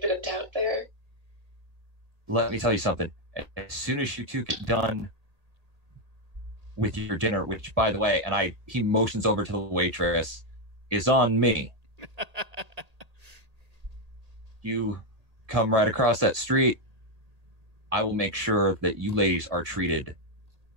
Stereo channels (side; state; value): left; late; 1.8 ms